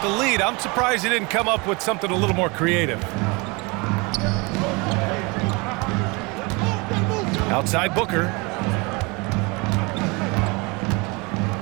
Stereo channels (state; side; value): quieter; left; 27.4 dB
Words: the lead, I'm surprised he didn't come up with something a little more creative. Outside Booker.